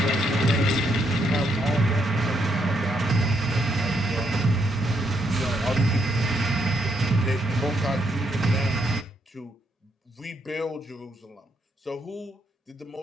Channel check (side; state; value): both; normal; correlation 0.76